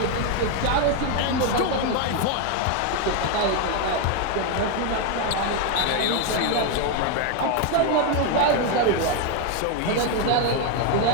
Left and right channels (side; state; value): both; different; correlation 0.01